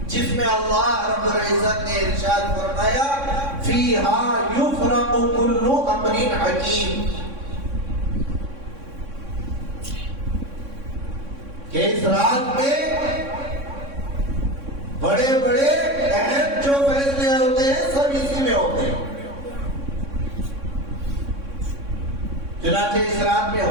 جس میں اللہ رب العزت نے ارشاد فرمایا فیہا یفرق کل امر حکیم، کہ اس رات میں بڑے بڑے اہم جو فیصلے ہوتے ہیں سب اسی میں ہوتے ہیں. چنانچہ اس رات میں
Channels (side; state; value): left; late; 3.6 ms